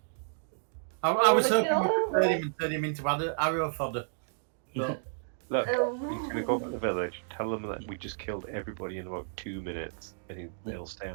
I was hoping we could turn him and turn him into arrow fodder. But Look, he's Um, going to go back to the village, tell them that we just killed everybody in about 2 minutes, and they'll stay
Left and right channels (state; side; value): silent; left; digital silence